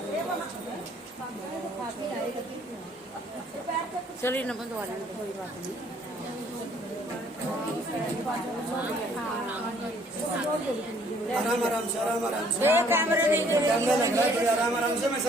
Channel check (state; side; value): normal; both; correlation 0.61